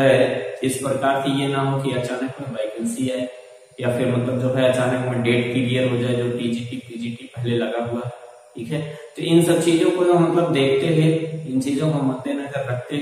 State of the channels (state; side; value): identical; both; correlation 1.00